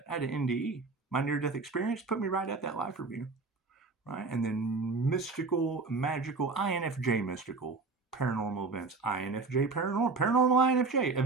I had an NDE. My near-death experience put me right at that life review. Right? And then mystical, magical, INFJ mystical, paranormal events, INFJ paranormal, INFJ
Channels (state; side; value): quieter; left; 4.1 dB